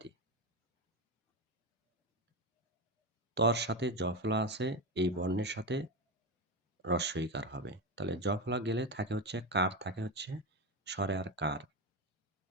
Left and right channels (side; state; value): both; normal; correlation 0.15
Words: তর সাথে জ ফলা আছে, এই বর্ণের সাথে হ্রস্বইকার হবে। তাহলে জ ফলা গেলে থাকে হচ্ছে কার, থাকে হচ্ছে স্বরে আর কার,